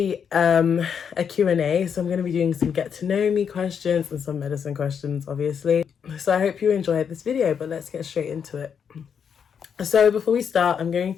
a Q&A, so I'm going to be doing some get to know me questions and some medicine questions, obviously. So I hope you enjoyed this video, but let's get straight into it. So before we start, I'm going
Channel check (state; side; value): quieter; right; 7.2 dB